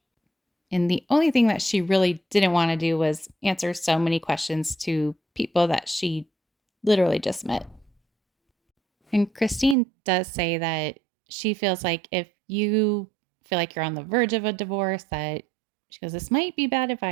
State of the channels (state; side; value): drops out; left; at 9.8 s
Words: And the only thing that she really didn't want to do was answer so many questions to people that she literally just met. And Christine does say that she feels like if you feel like you're on the verge of a divorce, that she goes, this might be bad